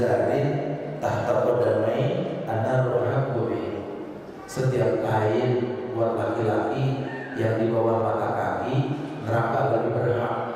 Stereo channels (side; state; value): both; identical; correlation 1.00